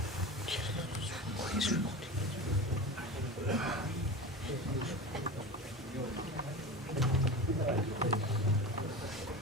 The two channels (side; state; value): both; normal; correlation 0.29